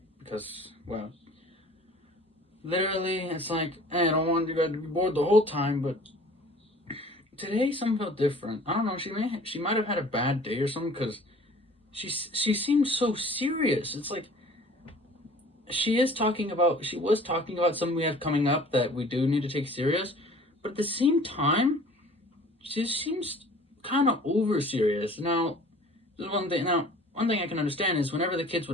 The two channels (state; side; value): normal; both; correlation 0.49